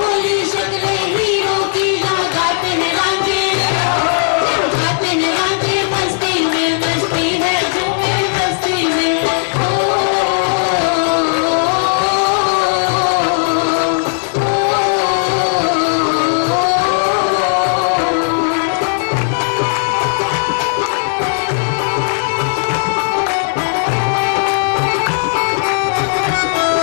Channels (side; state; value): right; silent; digital silence